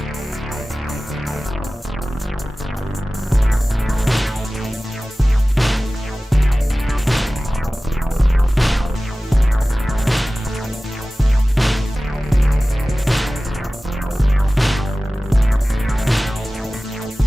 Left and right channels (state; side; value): normal; both; correlation 0.97